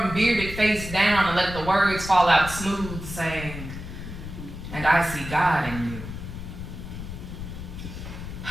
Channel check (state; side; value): noise; left; rumble, 9 dB below the sound